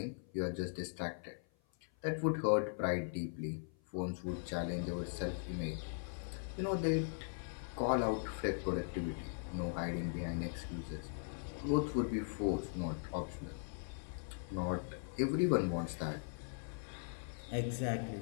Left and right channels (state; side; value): silent; right; 51 dB below the other